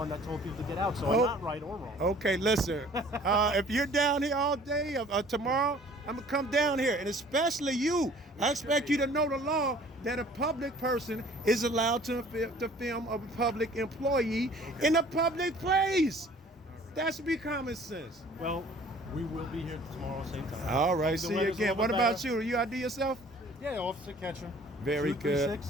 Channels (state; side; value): normal; both; correlation 0.52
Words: that told people to get out, so Oh. I'm not right or wrong. Okay, listen. If you're down here all day tomorrow, I'm gonna come down here, and especially you. I expect you to know the law that a public person is allowed to film a public employee in a public place. That should be common sense. Well, we will be here tomorrow, same time. All right, The see you weather's a again. little What bit about better. you? Are you ID yourself? Yeah, Officer Ketchum. Very good. 236,